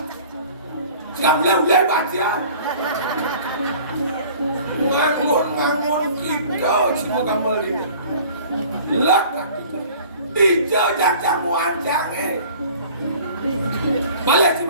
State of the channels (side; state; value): both; inverted; correlation -0.47